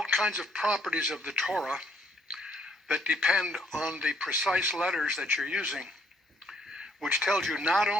kinds of properties of the Torah that depend on the precise letters that you're using, which tells you not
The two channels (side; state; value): both; normal; correlation 0.68